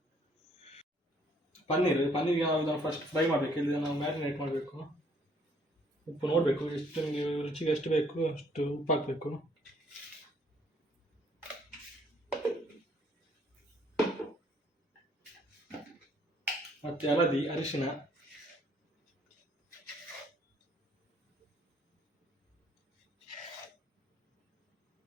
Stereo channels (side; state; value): both; normal; correlation 0.64